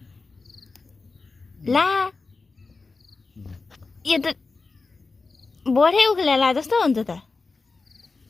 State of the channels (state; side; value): quieter; right; 4.0 dB